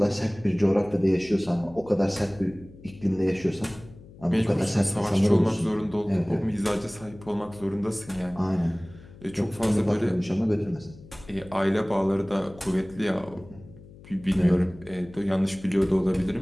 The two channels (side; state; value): left; noise; hum, 20 dB below the sound